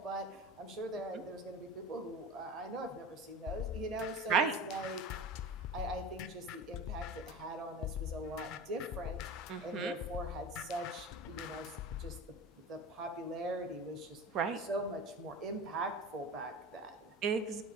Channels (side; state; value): both; normal; correlation 0.33